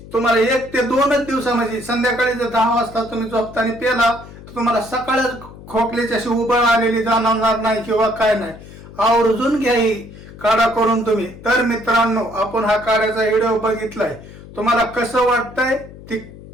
तुम्हाला 1 ते 2च दिवसामध्ये, संध्याकाळी जर 10 वाजता तुम्ही झोपताना प्याला तर तुम्हाला सकाळच खोकल्याची अशी उबळ आलेली जाणवणार नाही किंवा काय नाही. आवर्जून घ्या ही काढा करून तुम्ही. तर मित्रांनो आपण हा काढ्याचा व्हिडिओ बघितलाय, तुम्हाला कसं वाटतंय ती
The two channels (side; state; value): left; noise; hum, 17 dB below the sound